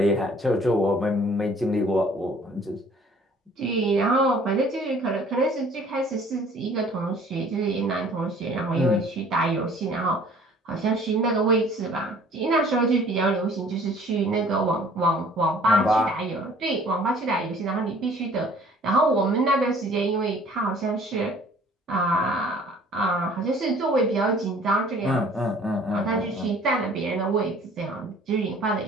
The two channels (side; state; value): both; normal; correlation 0.53